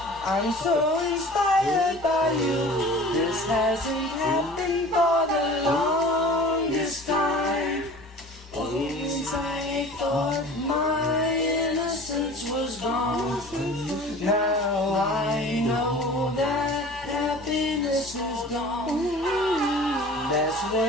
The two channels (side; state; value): both; normal; correlation 0.42